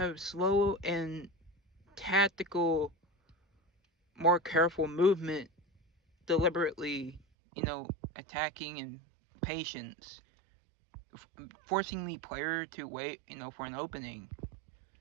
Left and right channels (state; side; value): drops out; left; at 7.2 s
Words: slow and tactical, more careful movement deliberately, attacking and patience, forcing the player to wait, for an opening.